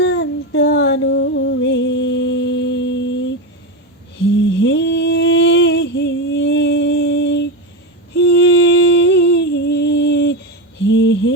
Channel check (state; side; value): normal; both; correlation 0.15